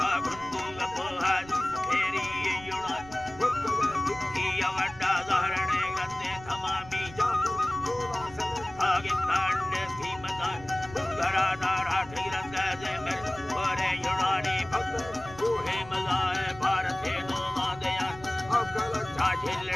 गुंदू गपोहा फेरी युणान किया वड्डा जहरने गंदे तमामी आगे तांडे कीमतान गरा नारा ठिरंग जे मेरे और युणानी भक्त कोहे मलाए भारत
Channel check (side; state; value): right; noise; rumble, 18 dB below the sound